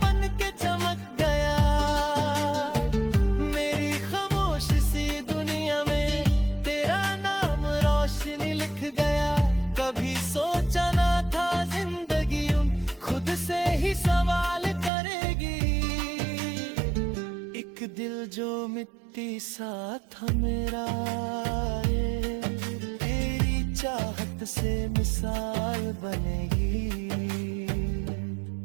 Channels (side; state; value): left; drops out; at 14.9 s